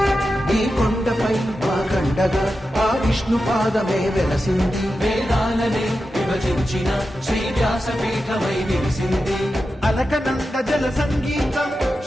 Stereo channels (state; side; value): normal; both; correlation 0.91